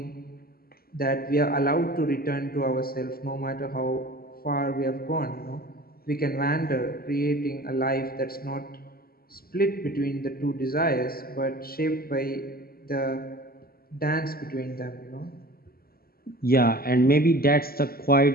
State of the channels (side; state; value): right; late; 0.44 ms